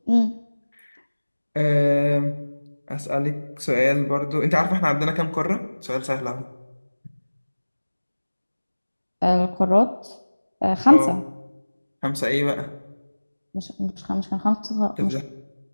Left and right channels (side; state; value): both; inverted; correlation -1.00